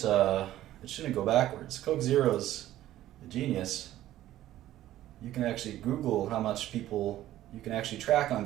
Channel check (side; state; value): left; quieter; 13.8 dB